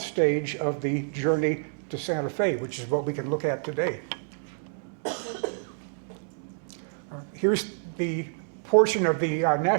of the journey to Santa Fe, which is what we can look at today. Here's the portion of the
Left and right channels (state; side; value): silent; left; digital silence